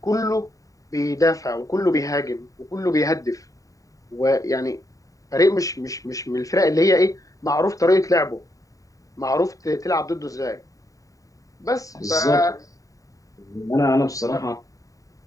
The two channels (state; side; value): late; right; 0.16 ms